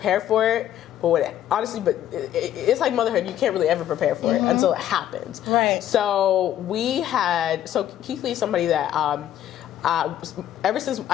for it. But it's like motherhood. You can't really ever prepare for it until it happens. Right. So Keith Lee is somebody that ever since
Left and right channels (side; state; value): right; quieter; 11.5 dB